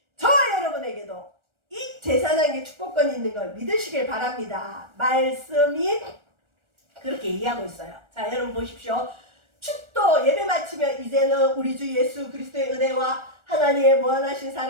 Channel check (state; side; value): late; left; 1.4 ms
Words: 저와 여러분에게도 이 제사장에게 축복권이 있는 걸 믿으시길 바랍니다. 말씀이 그렇게 얘기하고 있어요. 자, 여러분 보십시오. 축도 예배 마치면 이제는 우리 주 예수 그리스도의 은혜와 하나님의 무한하신